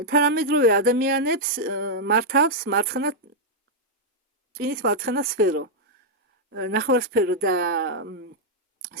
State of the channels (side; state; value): both; normal; correlation -0.04